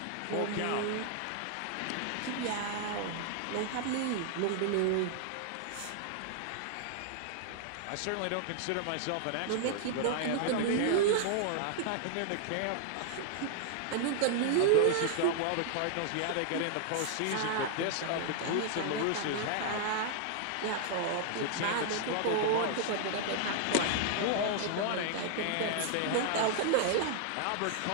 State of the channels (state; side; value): different; both; correlation 0.00